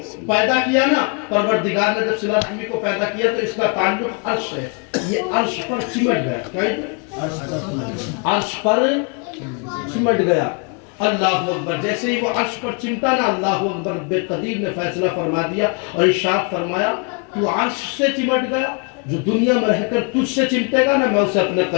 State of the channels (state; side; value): quieter; right; 36.1 dB